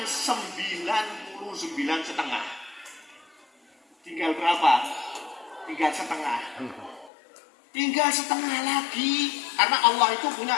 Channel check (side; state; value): right; drops out; at 7.1 s